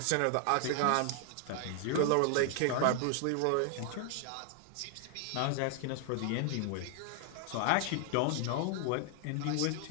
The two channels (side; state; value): both; different; correlation 0.00